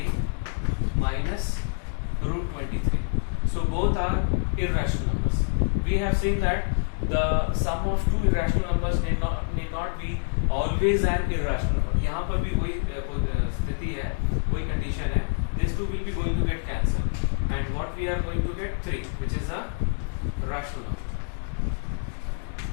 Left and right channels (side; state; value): right; silent; digital silence